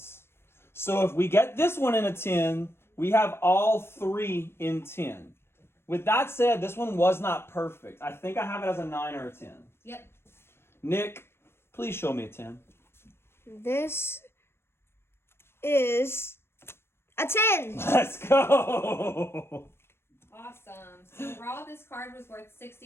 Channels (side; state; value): right; late; 0.12 ms